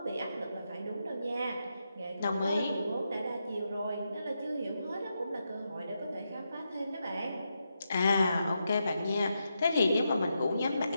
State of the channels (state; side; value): inverted; both; correlation -0.85